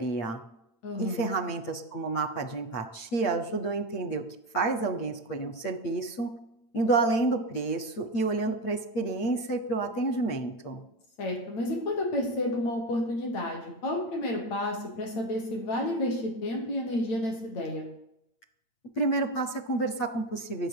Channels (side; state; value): right; late; 8.8 ms